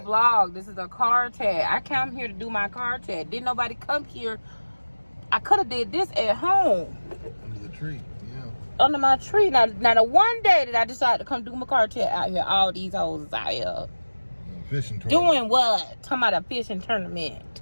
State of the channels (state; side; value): inverted; both; correlation -1.00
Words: a vlog. This is a car chat. I came here to do my car chat. Didn't nobody come here. I could have did this at home. Under the tree, yeah. Under my tree. Now the one day that I decided to come do my car chat out here, all these hoes is out here. Fishing tournament. Doing what? Talking about a fishing tournament.